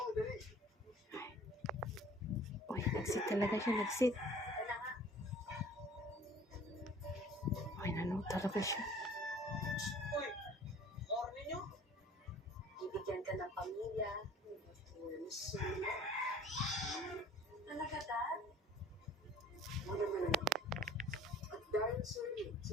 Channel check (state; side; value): normal; both; correlation 0.49